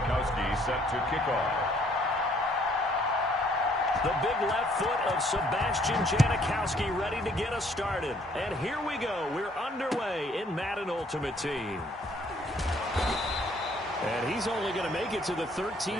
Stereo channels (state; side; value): normal; both; correlation 0.63